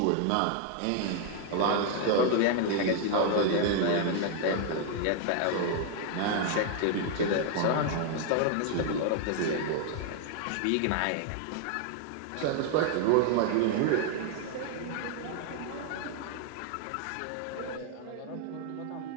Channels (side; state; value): both; different; correlation 0.00